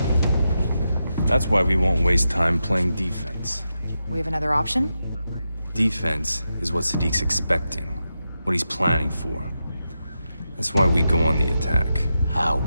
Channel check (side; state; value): both; inverted; correlation -0.88